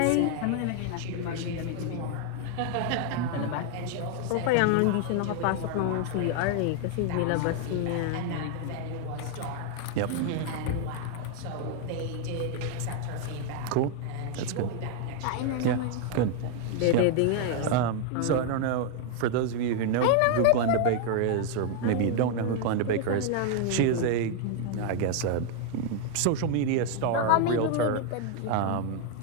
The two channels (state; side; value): different; both; correlation 0.00